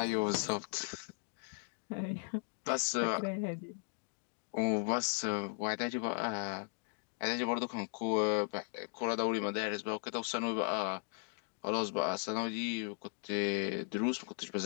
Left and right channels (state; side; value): silent; right; 53 dB below the other